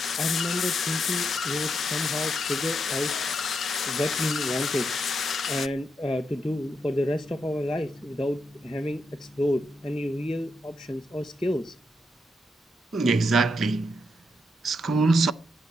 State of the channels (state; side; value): normal; both; correlation 0.82